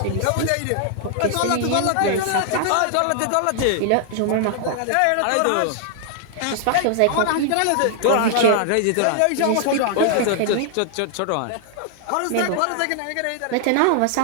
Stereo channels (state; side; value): different; both; correlation 0.00